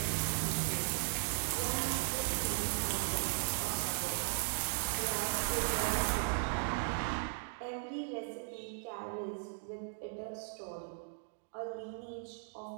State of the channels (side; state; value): left; silent; digital silence